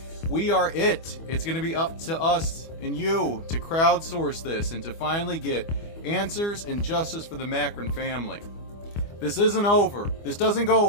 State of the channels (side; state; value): right; late; 25 ms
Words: we are it. It's going to be up to us and you to crowdsource this and to finally get answers and justice for the Macron family. This isn't over. This doesn't go